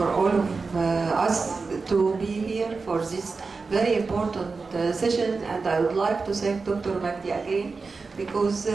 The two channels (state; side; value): quieter; left; 4.4 dB